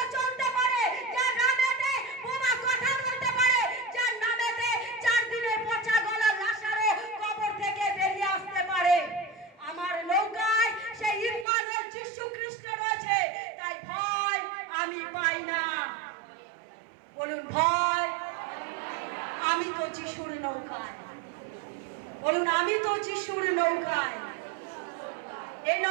চলতে পারে, যার নামেতে বোমা কথা বলতে পারে, যার নামেতে 4 দিনের পচা গলা লাশারও কবর থেকে বেরিয়ে আসতে পারে। আমার নৌকায় সেই ইম্মানুয়েল যিশু খ্রিস্ট রয়েছে, তাই ভয় আমি পাই না। বলুন, ভয় আমি তো যিশুর নৌকায়। বলুন, আমি তো যিশুর নৌকায়। এই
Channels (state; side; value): drops out; left; at 11.5 s